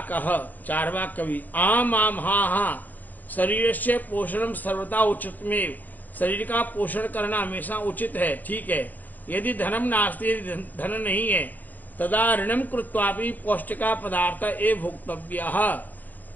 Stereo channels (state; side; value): late; right; 0.084 ms